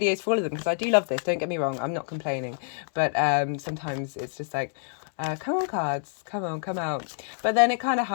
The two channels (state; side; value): silent; right; digital silence